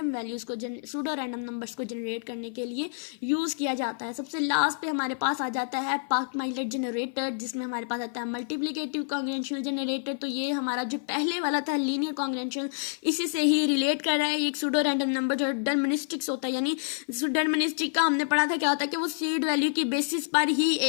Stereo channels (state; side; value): silent; right; 55 dB below the other